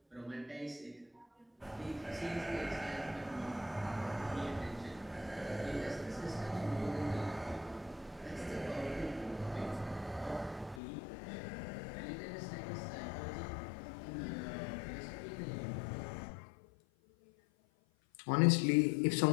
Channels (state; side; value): drops out; right; at 10.8 s